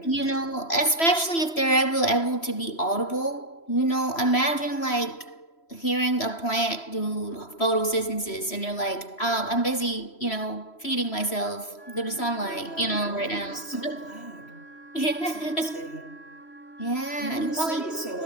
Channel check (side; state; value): right; late; 3.0 ms